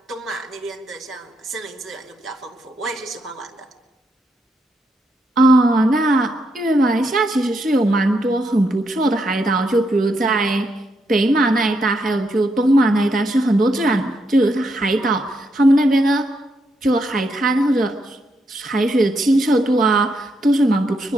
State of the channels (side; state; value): both; normal; correlation 0.79